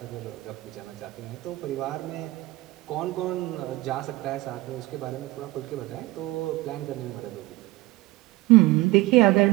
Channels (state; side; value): quieter; left; 19.5 dB